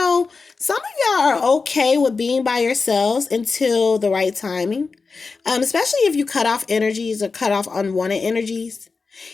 some of y'all are okay with being by yourselves until the right timing. Especially if you cut off energies or cut off unwanted energies.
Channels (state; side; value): quieter; right; 4.5 dB